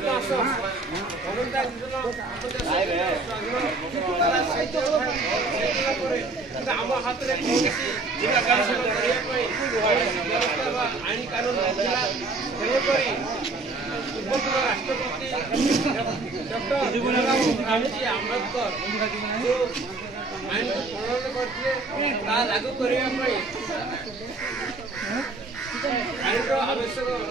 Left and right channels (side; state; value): left; quieter; 3.5 dB